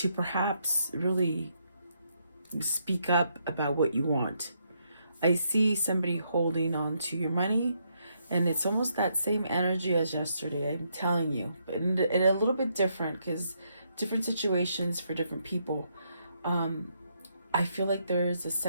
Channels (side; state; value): both; inverted; correlation -0.76